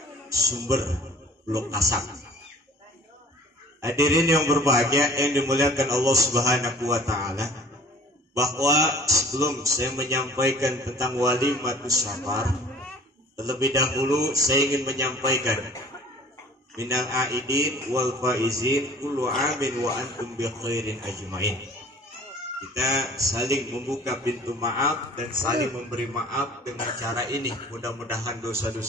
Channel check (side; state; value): both; normal; correlation 0.49